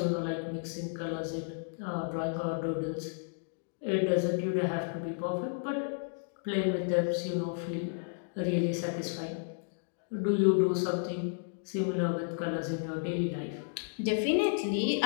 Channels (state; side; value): silent; right; digital silence